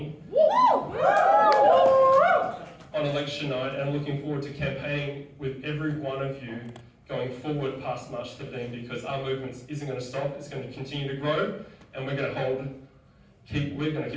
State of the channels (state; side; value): identical; both; correlation 1.00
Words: on election night, and I'm looking forward to campaigning with every one of you going forward past March 13, because our movement isn't going to stop. It's going to continue to grow, and we're going to keep